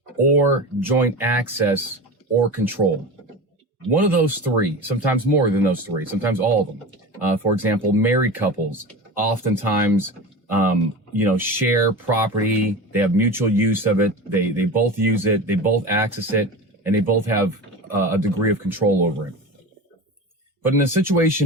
or joint access or control? One of those three, sometimes more than those three, sometimes all of them. For example, married couples oftentimes, share property. They have mutual use of it. They both use it. They both access it, and they both have a degree of control over it. But in a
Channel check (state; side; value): normal; both; correlation 0.29